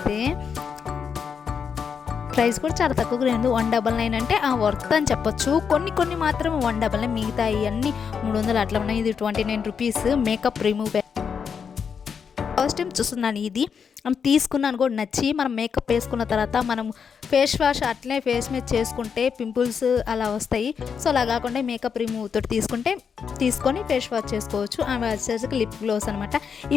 ప్రైస్ కూడా చాలా తక్కువగా లేదు, 199 అంటే వర్త్ అని చెప్పొచ్చు. కొన్ని మాత్రం 199, మిగతా అన్నీ 300 అట్లా ఉన్నాయి. ఇది 29 rupees makeup remove. First time చూస్తున్నాను ఇది, తీసుకున్నాను కూడా నచ్చి. మనం మేకప్ వేసుకున్న తర్వాత మనం ఫేస్ వాష్ అట్లనే ఫేస్ మీద చేసుకుంటే పింపుల్స్ అలా వస్తాయి. సో అలా కాకుండా మేకప్ రిమూవ్ తోటి తీసుకొని ఫేస్ వాష్ చేసుకోవచ్చు. ఆమె వచ్చేసరికి లిప్ గ్లోస్ అనమాట.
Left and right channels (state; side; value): quieter; right; 6.6 dB